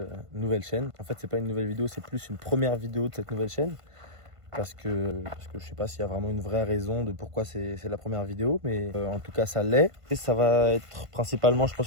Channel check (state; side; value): late; left; 1.5 ms